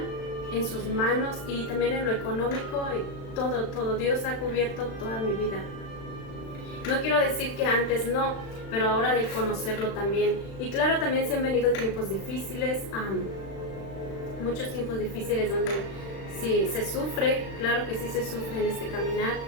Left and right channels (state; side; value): late; right; 36 ms